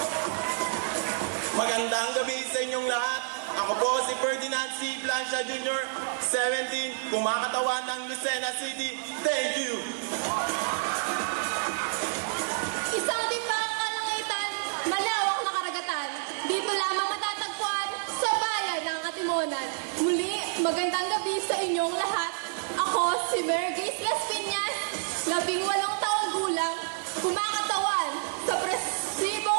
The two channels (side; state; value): left; silent; digital silence